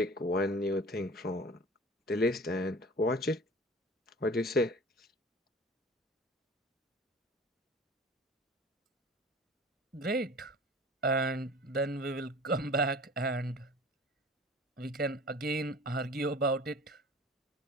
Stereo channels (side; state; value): both; normal; correlation 0.42